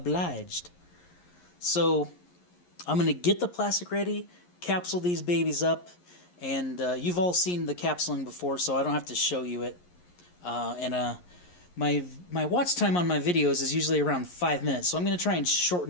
So I'm going to get the plastic ready, capsule these babies up, and you've all seen the capsuling before, so I don't have to show you it. My watch time on my videos is usually around 5 minutes, so I'm going to try and shorten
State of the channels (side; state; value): right; late; 11 ms